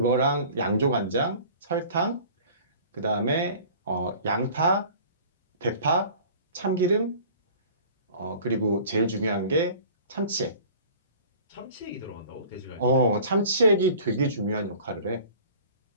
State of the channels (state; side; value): inverted; both; correlation -0.45